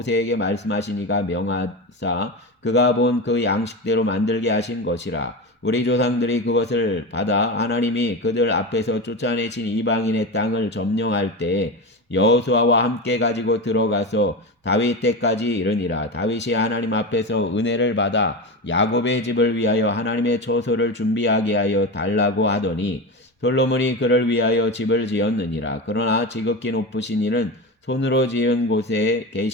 말씀하시니가 명하사 그가 본 그 양식대로 만들게 하신 것이라. 우리 조상들이 그것을 받아 하나님이 그들 앞에서 쫓아내신 이방인의 땅을 점령할 때에 여호수아와 함께 가지고 들어가서 다윗 때까지 이르니라. 다윗이 하나님 앞에서 은혜를 받아 야곱의 집을 위하여 하나님의 처소를 준비하게 하여 달라고 하더니 솔로몬이 그를 위하여 집을 지었느니라. 그러나 지극히 높으신 이는 손으로 지은 곳에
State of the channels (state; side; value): normal; both; correlation 0.22